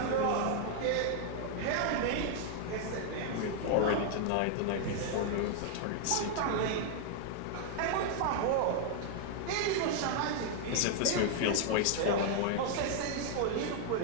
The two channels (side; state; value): both; different; correlation 0.00